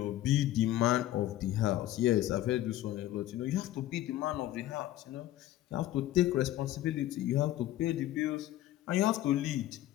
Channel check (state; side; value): quieter; right; 14.3 dB